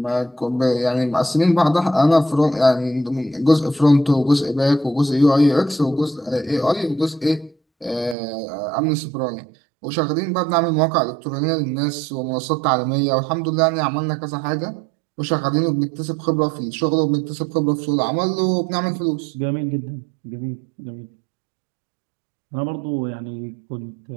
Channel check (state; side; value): drops out; left; at 8.2 s